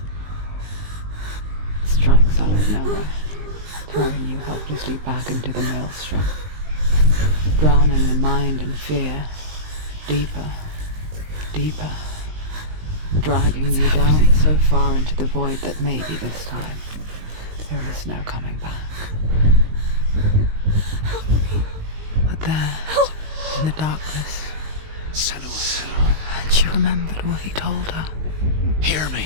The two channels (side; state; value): left; late; 19 ms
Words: it strikes out of nowhere, throwing you helplessly back into the maelstrom, drowning the mind in fear, deeper, deeper, dragging you down so far into the void that maybe this time there is no coming back. But there, in the darkness, Senua, and she remembered what he told her. hear me.